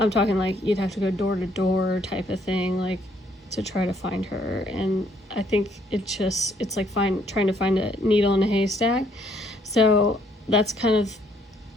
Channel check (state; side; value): normal; both; correlation 0.67